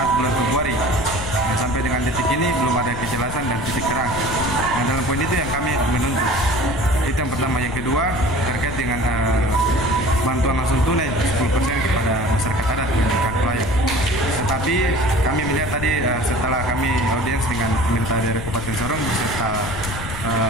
bulan Februari. Nah, sampai dengan detik ini belum ada kejelasan dan titik terang. Nah, dalam poin itu yang kami menuntut. Itu yang pertama. Yang kedua, terkait dengan bantuan langsung tunai 10% kepada masyarakat adat dan hak layak. Tetapi kami melihat tadi setelah kami audiens dengan pemerintah daerah Kabupaten Sorong beserta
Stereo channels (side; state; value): left; noise; rumble, 8 dB below the sound